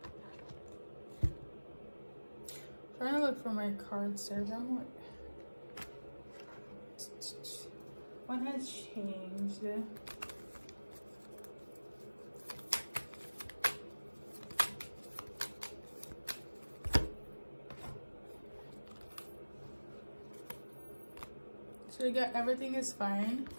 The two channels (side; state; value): both; inverted; correlation -1.00